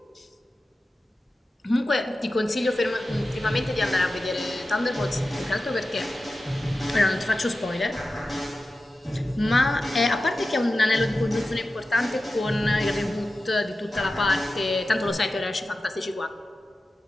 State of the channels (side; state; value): both; normal; correlation 0.94